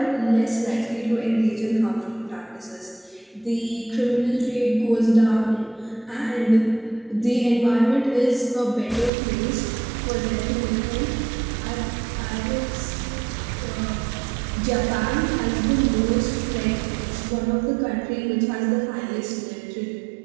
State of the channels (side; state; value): left; drops out; at 9.1 s